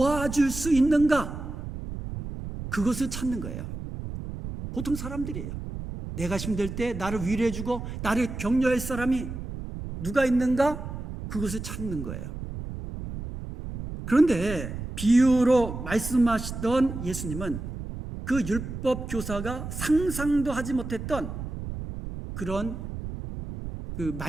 수 있는가? 그것을 찾는 거예요. 보통 사람들이에요. 내가 힘들 때 나를 위로해주고 나를 격려할 사람이 누가 있는가? 그것을 찾는 거예요. 그런데 비유로 말씀하시던 예수님은 그 율법 교사가 상상도 하지 못했던 그런 그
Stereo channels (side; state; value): right; noise; rumble, 8 dB below the sound